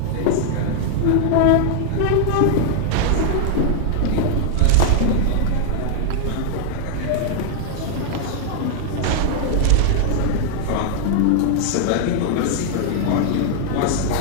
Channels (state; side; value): different; both; correlation 0.00